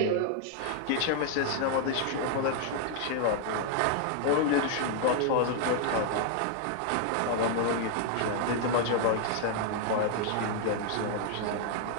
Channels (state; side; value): different; both; correlation 0.00